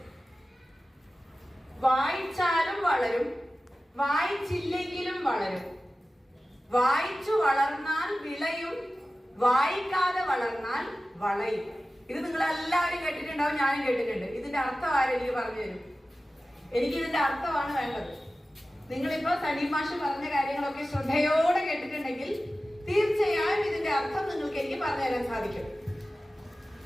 വായിച്ചാലും വളരും, വായിച്ചില്ലെങ്കിലും വളരും, വായിച്ചു വളർന്നാൽ വിളയും, വായിക്കാതെ വളർന്നാൽ വളയും. ഇത് നിങ്ങൾ എല്ലാവരും കേട്ടിട്ടുണ്ടാവും, ഞാനും കേട്ടിട്ടുണ്ട്. ഇതിന്റെ അർത്ഥം ആരെനിക്ക് പറഞ്ഞു തരും? എനിക്ക് ഇതിന്റെ അർത്ഥമാണ് വേണ്ടത്. നിങ്ങളിപ്പോ സലീം മാഷ് പറഞ്ഞ കാര്യങ്ങളൊക്കെ ശ്രദ്ധയോടെ കേട്ടിട്ടുണ്ടെങ്കിൽ തീർച്ചയായും ഇതിന്റെ അർത്ഥം നിങ്ങൾക്ക് എനിക്ക് പറഞ്ഞു തരാൻ സാധിക്കും.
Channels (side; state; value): both; normal; correlation 0.95